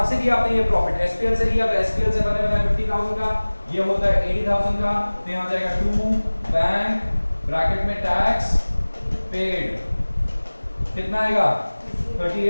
से लिया आपने, ये प्रॉफिट एसपीएल से लिया। तो एसपीएल से बने बना 50,000 का, ये होता है 80,000 का। तो यहां आ जाएगा टू बैंक ब्रैकेट में टैक्स पेड, कितना आएगा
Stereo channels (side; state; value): both; inverted; correlation -1.00